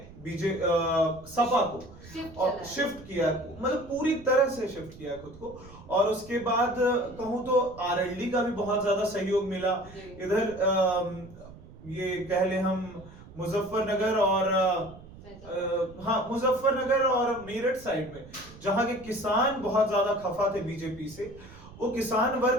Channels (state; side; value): noise; right; rumble, 19 dB below the sound